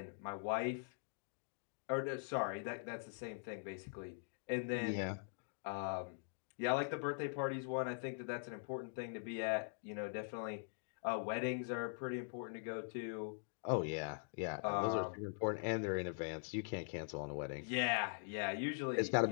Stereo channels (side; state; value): right; silent; digital silence